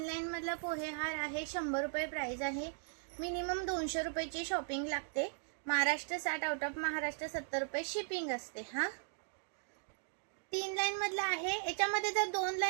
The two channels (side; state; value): left; silent; digital silence